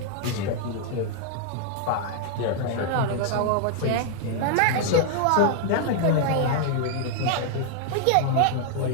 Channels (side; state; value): both; different; correlation 0.00